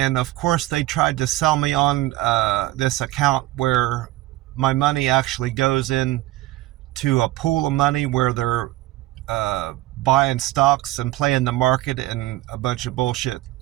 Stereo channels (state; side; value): quieter; left; 17.5 dB